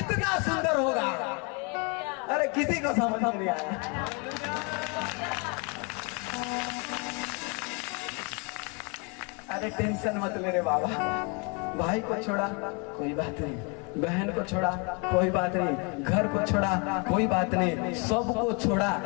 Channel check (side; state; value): right; quieter; 33.0 dB